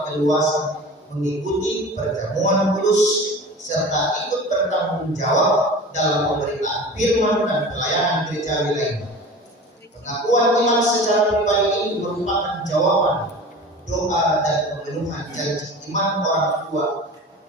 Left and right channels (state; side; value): normal; both; correlation 0.37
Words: keluasan mengikuti perjamuan kudus serta ikut bertanggung jawab dalam pemberitaan firman dan pelayanan gerejawi lainnya. Pengakuan iman secara pribadi ini merupakan jawaban doa dan pemenuhan janji iman orang tua